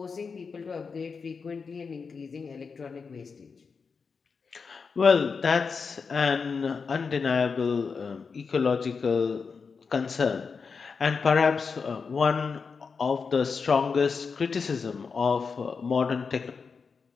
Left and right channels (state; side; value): quieter; right; 5.3 dB